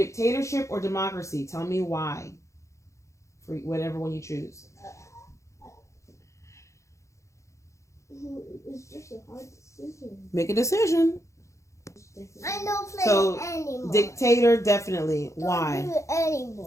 or democracy? Tell me why. For whatever one you choose. It's just a hard decision. Make a decision. I don't play So, anymore. Dictator, definitely. Don't Why? do it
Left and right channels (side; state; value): right; late; 0.15 ms